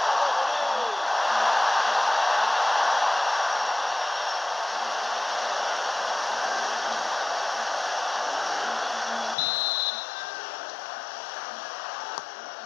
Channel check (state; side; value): drops out; right; at 9.3 s